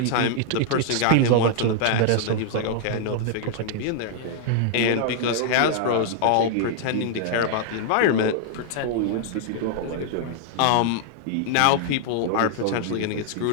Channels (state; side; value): different; both; correlation 0.00